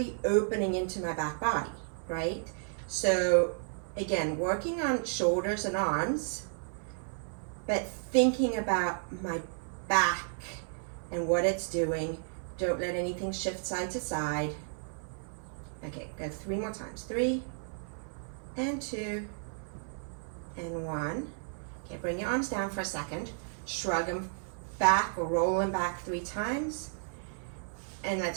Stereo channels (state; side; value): silent; left; 56 dB below the other